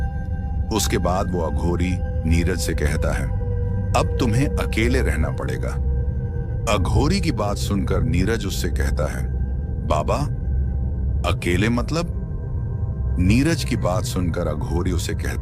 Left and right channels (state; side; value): identical; both; correlation 1.00